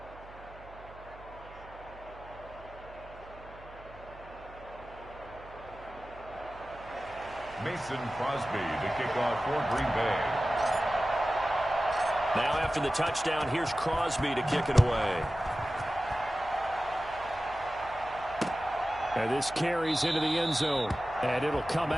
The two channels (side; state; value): right; noise; hum, 19 dB below the sound